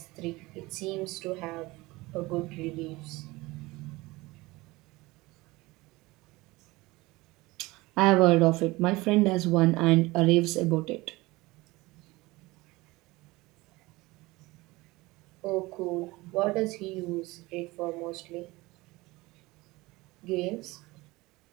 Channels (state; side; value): quieter; left; 21.3 dB